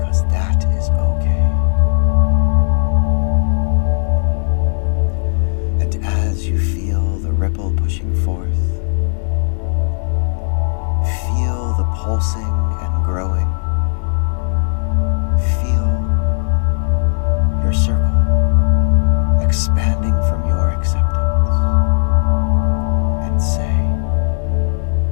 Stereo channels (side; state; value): right; silent; digital silence